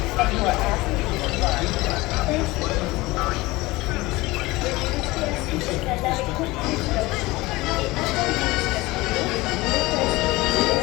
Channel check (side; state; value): right; quieter; 20.9 dB